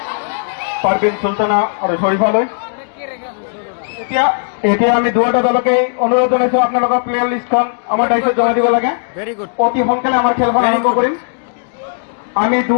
পারভিন সুলতানা আৰু শরীফালৈ। এতিয়া এতিয়া আমি দুয়োটা দলকে অনুৰোধ জনাইছো আপোনালোকৰ প্লেয়াৰ লিষ্টখন আমাৰ দায়িত্বত জমা দিব লাগে ভেৰি গুড। অতি সোনকালে আমাৰ খেলখন আৰম্ভ কৰিম আমি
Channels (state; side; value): silent; right; digital silence